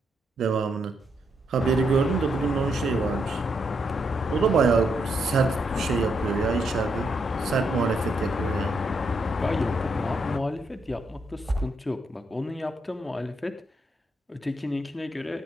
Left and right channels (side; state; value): both; normal; correlation 0.78